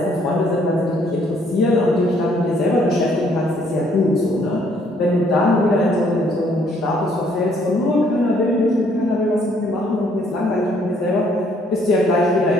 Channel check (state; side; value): normal; both; correlation 0.66